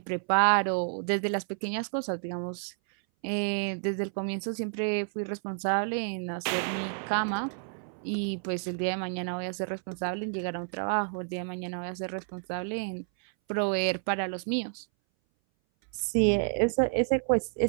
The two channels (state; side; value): silent; left; 58 dB below the other